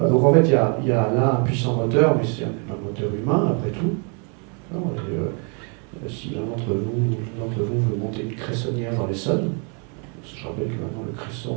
donc en fait, il y a là un puissant moteur, mais c'est un moteur humain après tout. Non, si l'un d'entre vous veut monter une cressonnière dans l'Essonne, je rappelle que maintenant le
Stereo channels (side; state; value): left; quieter; 37.4 dB